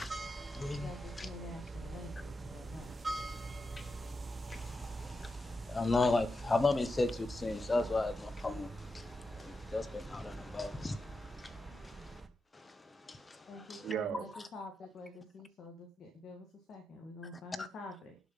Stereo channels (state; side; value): normal; both; correlation 0.88